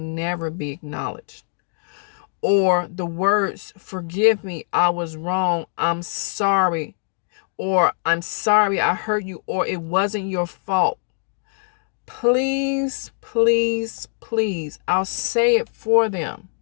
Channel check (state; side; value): silent; right; digital silence